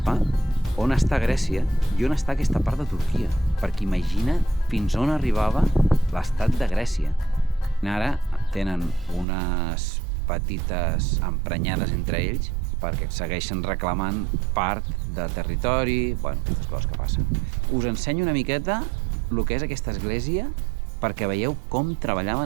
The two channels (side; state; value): left; drops out; at 9.2 s